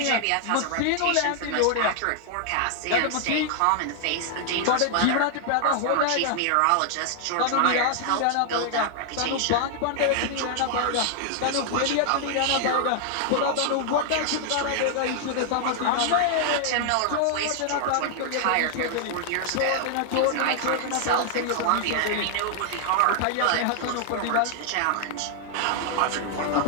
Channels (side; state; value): both; different; correlation 0.00